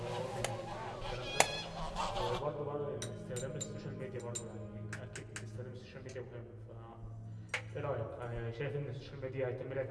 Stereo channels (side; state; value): both; identical; correlation 1.00